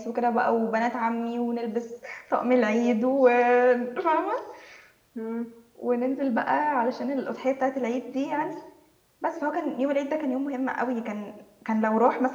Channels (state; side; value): identical; both; correlation 1.00